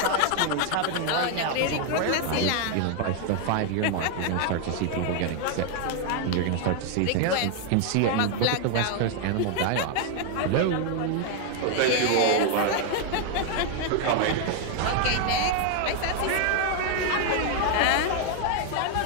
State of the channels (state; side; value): different; both; correlation 0.01